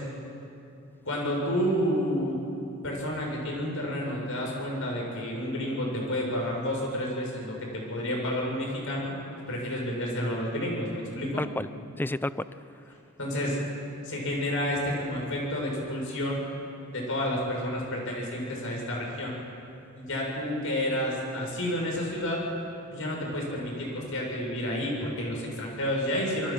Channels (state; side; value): normal; both; correlation 0.30